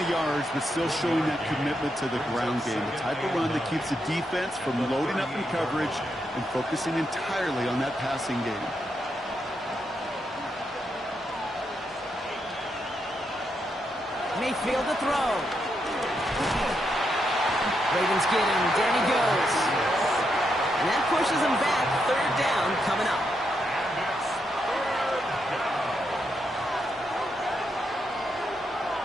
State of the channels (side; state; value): both; normal; correlation 0.81